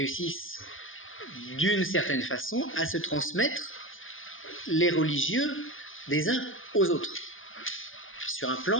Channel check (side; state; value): right; late; 0.58 ms